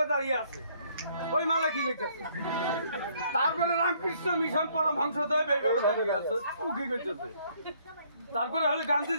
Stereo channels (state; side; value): inverted; both; correlation -0.65